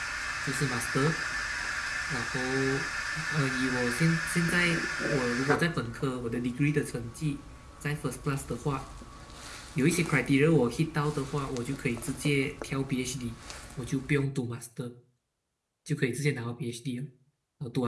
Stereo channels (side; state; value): both; identical; correlation 1.00